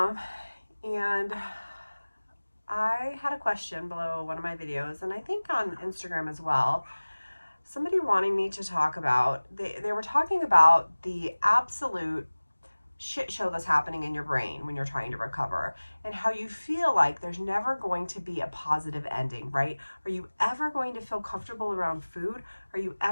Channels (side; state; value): both; inverted; correlation -1.00